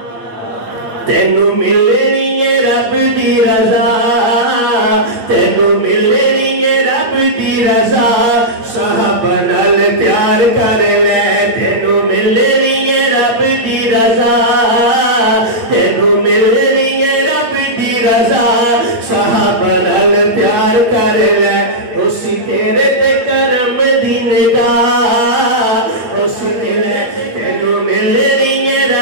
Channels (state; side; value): late; left; 8.3 ms